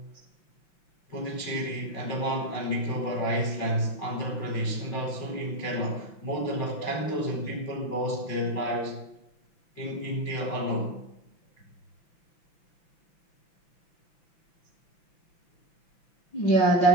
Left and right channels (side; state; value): right; late; 5.9 ms